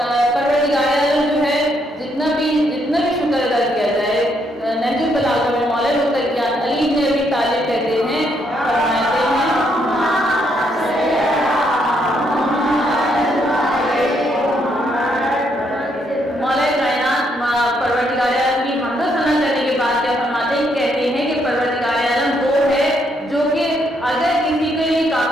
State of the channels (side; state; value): both; normal; correlation 0.74